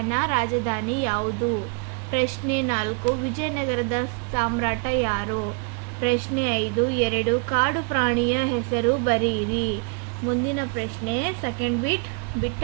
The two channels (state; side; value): quieter; left; 34.9 dB